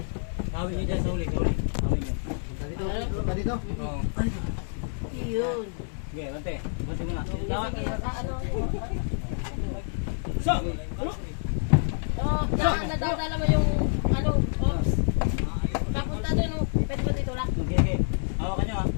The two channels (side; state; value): right; silent; digital silence